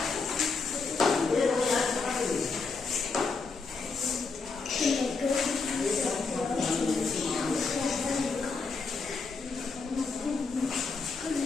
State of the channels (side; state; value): right; quieter; 4.4 dB